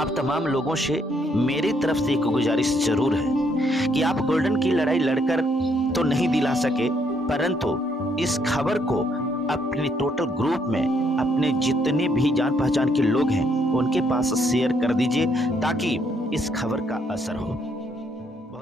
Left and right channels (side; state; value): both; normal; correlation 0.71